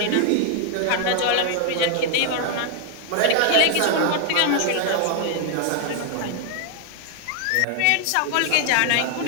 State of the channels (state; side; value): different; both; correlation 0.00